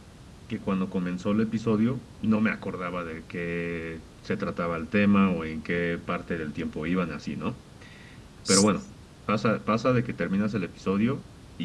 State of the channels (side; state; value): both; identical; correlation 1.00